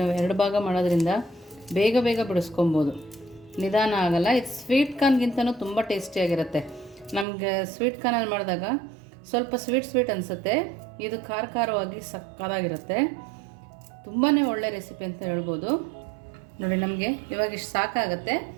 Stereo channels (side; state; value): left; drops out; at 7.2 s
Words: 2 ಭಾಗ ಮಾಡೋದ್ರಿಂದ ಬೇಗ ಬೇಗ ಬಿಡಿಸ್ಕೊಬೋದು, ನಿಧಾನ ಆಗಲ್ಲ. ಇದು ಸ್ವೀಟ್ ಕಾರ್ನ್ಗಿಂತನೂ ತುಂಬ ಟೇಸ್ಟಿಯಾಗಿರುತ್ತೆ. ನಮಗೆ ಸ್ವೀಟ್ ಕಾರ್ನಲ್ಲಿ ಮಾಡಿದಾಗ ಸ್ವಲ್ಪ ಸ್ವೀಟ್ ಅನಿಸುತ್ತೆ. ಇದು ಖಾರವಾಗಿ ಸಕ್ಕತ್ತಾಗಿರುತ್ತೆ. ತುಂಬಾ ಒಳ್ಳೆ ರೆಸಿಪಿ ಅಂತ ಹೇಳ್ಬೋದು. ನೋಡಿ, ನಮಗೆ ಇವಾಗ ಇಷ್ಟು ಸಾಕಾಗುತ್ತೆ.